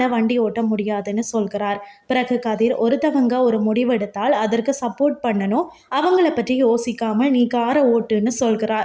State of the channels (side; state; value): both; identical; correlation 1.00